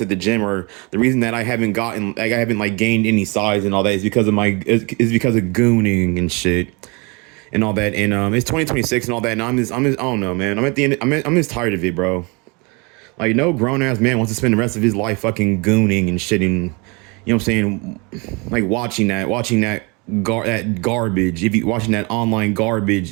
at the gym, or the reason that I haven't like gained any size and all that, is because of gooning and shit and all that. And it's 2026 and all that, and I'm just I don't know, man. I'm at the end. I'm just tired of it, bro. Like, no grown ass man wants to spend the rest of his life fucking gooning and shit, and you know what I'm saying, like watching that garbage. If you watching that online garbage,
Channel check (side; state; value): left; quieter; 29.3 dB